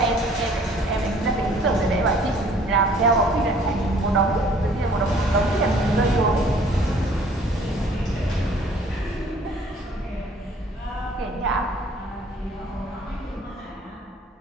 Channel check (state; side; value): normal; both; correlation 0.56